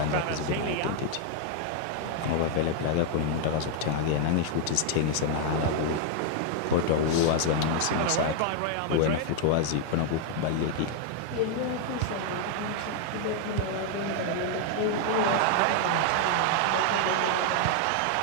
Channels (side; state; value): both; different; correlation 0.00